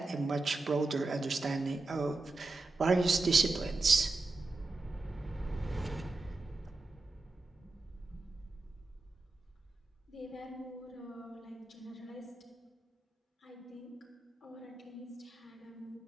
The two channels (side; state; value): left; quieter; 3.3 dB